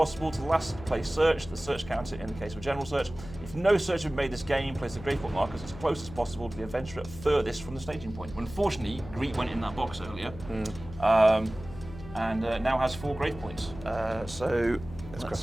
to the last placed search. The search counter in the case of a general search. If no search had been made this game, place the grave point markers as close as possible to the adventurer furthest from the staging point. Unfortunately, Greet went in that box earlier, and now has 4 grave points. So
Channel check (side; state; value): left; noise; hum, 14 dB below the sound